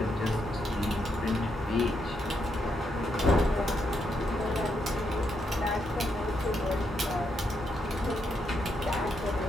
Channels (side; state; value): both; normal; correlation 0.79